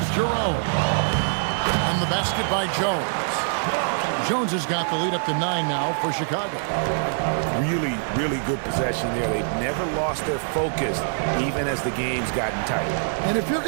Jerome. And the basket by Jones. Jones has got the lead up to 9 now for Chicago. Really, really good possession there. They've never lost their focus, even as the game's gotten tight. And if you're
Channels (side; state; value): left; silent; digital silence